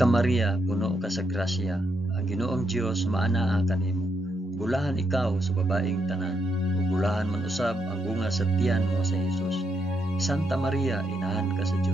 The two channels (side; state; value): both; normal; correlation 0.79